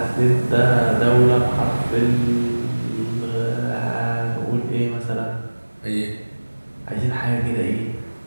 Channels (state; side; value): inverted; both; correlation -1.00